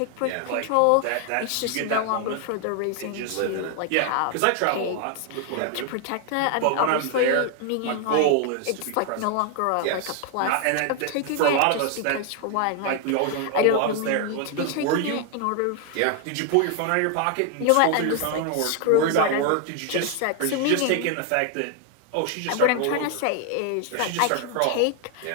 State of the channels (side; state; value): both; different; correlation 0.00